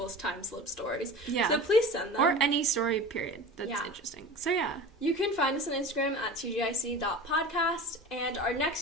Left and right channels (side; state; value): both; normal; correlation 0.34